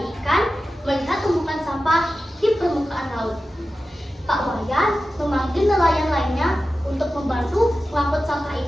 ikan, melihat tumpukan sampah di permukaan laut. Pak Wayan memanggil nelayan lainnya untuk membantu mengangkut sampah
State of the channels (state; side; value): normal; both; correlation 0.93